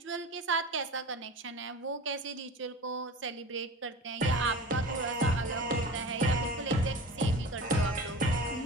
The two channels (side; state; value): both; normal; correlation 0.34